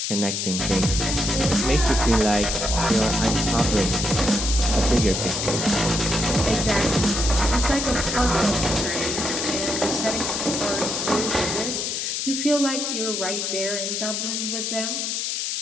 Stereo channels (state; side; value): noise; left; hiss, 2 dB below the sound